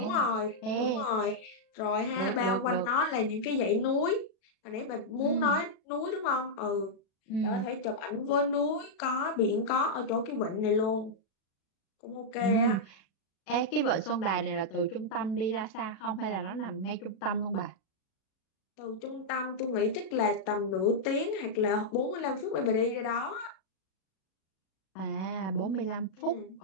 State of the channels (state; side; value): late; right; 37 ms